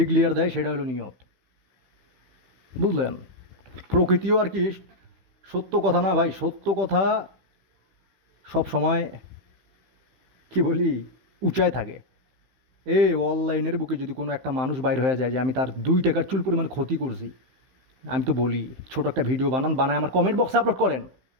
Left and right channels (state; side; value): late; left; 15 ms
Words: দেয়, সেটা হলো নিয়ত। বুঝলেন? প্রকৃতিও আর কি সত্য কথা না ভাই, সত্য কথা সব সময় কি বলি উঁচায় থাকে। এই অনলাইনের বুকে যদি কোনো একটা মানুষ বাইর হয়ে যায় যে আমি তার 2 টাকার চুল পরিমাণ ক্ষতি করছি, আমি তো বলি ছোট একটা ভিডিও বানায় আমার কমেন্ট বক্সে আপলোড করেন।